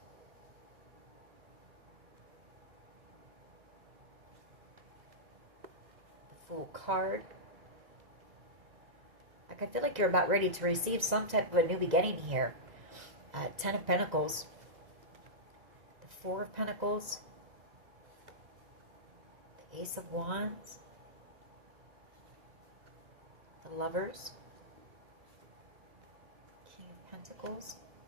the Fool card. Like, I feel like you're about ready to receive some type of a new beginning here. Ten of Pentacles, the Four of Pentacles, the Ace of Wands, the Lovers, King of Pentacles,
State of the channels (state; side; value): late; left; 1.9 ms